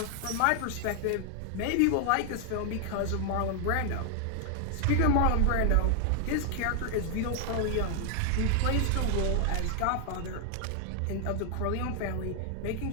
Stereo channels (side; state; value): both; different; correlation 0.00